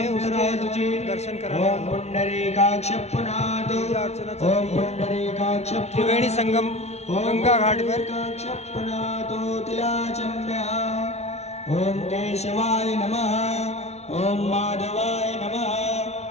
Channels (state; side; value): late; right; 0.31 ms